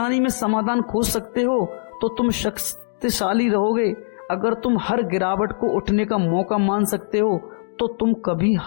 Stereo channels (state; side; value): silent; right; digital silence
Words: में समाधान खोज सकते हो तो तुम शक्तिशाली रहोगे। अगर तुम हर गिरावट को उठने का मौका मान सकते हो तो तुम कभी